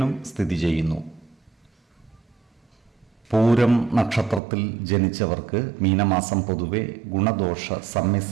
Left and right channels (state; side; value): drops out; left; at 4.4 s